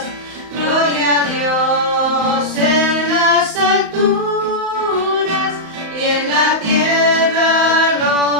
Gloria a Dios en las alturas y en la tierra al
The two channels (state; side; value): late; left; 35 ms